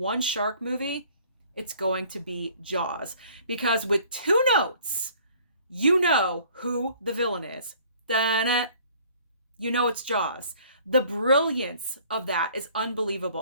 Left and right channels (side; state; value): both; inverted; correlation -0.55